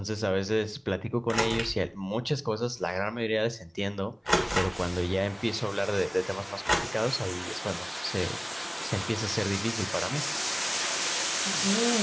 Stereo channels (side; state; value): both; identical; correlation 1.00